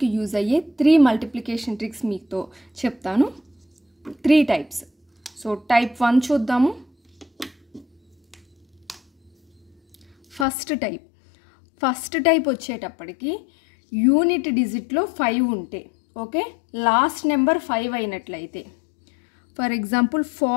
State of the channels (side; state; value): right; drops out; at 10.5 s